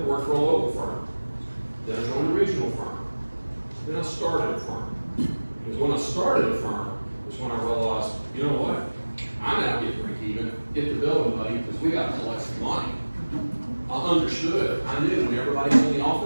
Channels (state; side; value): inverted; both; correlation -1.00